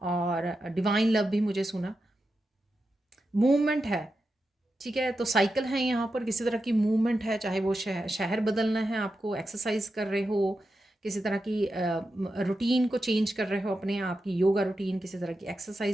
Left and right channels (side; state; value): both; normal; correlation 0.89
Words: और डिवाइन लव भी मुझे सुना। मूवमेंट है, ठीक है? तो साइकिल है यहाँ पर, किसी तरह की मूवमेंट है, चाहे वो शहर बदलना है आपको, एक्सरसाइज कर रहे हो, किसी तरह की रूटीन को चेंज कर रहे हो, अपने आप की योगा रूटीन, किसी तरह की